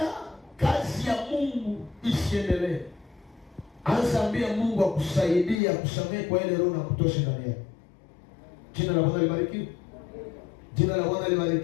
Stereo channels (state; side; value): drops out; right; at 5.6 s